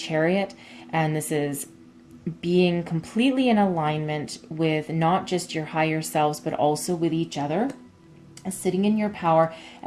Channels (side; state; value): both; identical; correlation 1.00